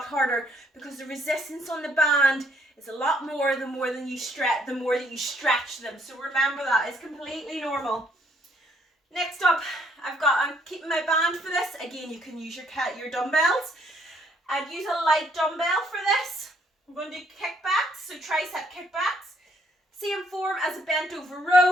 harder, because the resistance on the band is a lot more the more that you stretch them. So remember that, it's completely normal. Next up, I'm keeping my band for this. Again, you can use your dumbbells. I'd use a light dumbbell for this. We're going to do kickbacks, so tricep kickbacks. Same form as a bent over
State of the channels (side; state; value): both; normal; correlation 0.67